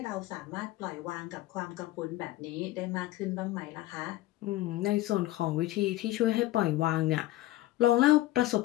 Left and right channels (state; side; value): quieter; right; 16.6 dB